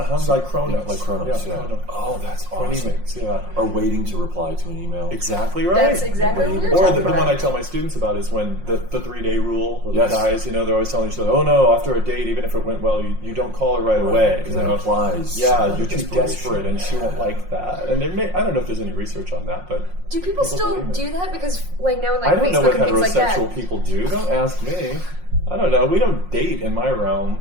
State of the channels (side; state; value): left; late; 5.6 ms